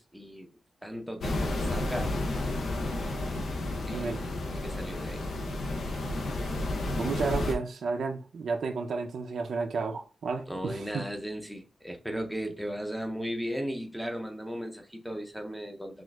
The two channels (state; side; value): normal; both; correlation 0.87